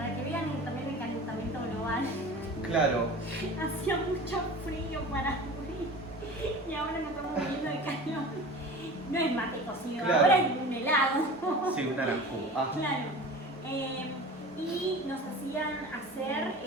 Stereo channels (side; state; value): both; normal; correlation 0.37